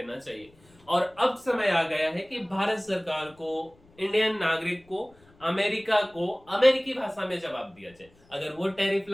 चाहिए। और अब समय आ गया है कि भारत सरकार को, इंडियन नागरिक को, अमेरिका को अमेरिकी भाषा में जवाब दिया जाए। अगर वो टैरिफ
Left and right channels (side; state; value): left; noise; rumble, 29 dB below the sound